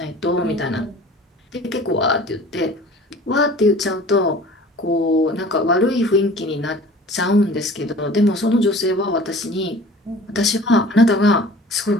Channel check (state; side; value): normal; both; correlation 0.45